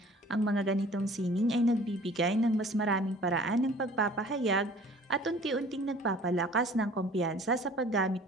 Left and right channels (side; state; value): both; normal; correlation 0.49